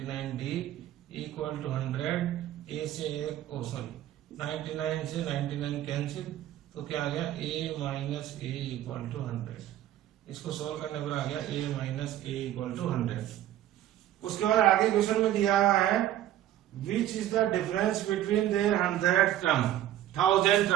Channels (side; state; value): left; quieter; 12.7 dB